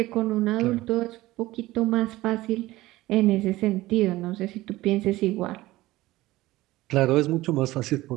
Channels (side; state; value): left; quieter; 17.8 dB